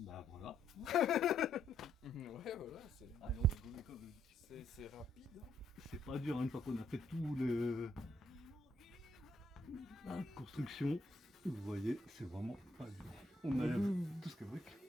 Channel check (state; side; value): normal; both; correlation 0.72